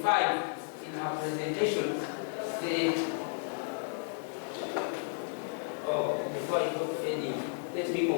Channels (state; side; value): silent; right; 55 dB below the other